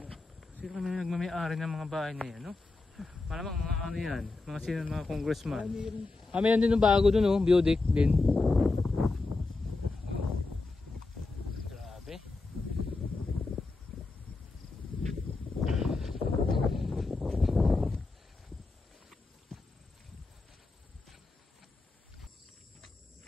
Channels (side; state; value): right; quieter; 3.5 dB